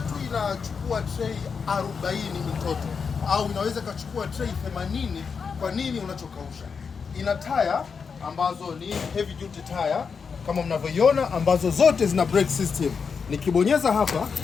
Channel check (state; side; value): quieter; right; 5.8 dB